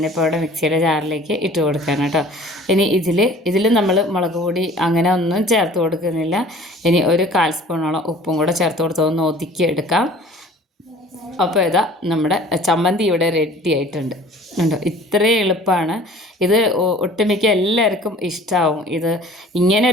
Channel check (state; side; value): normal; both; correlation 0.48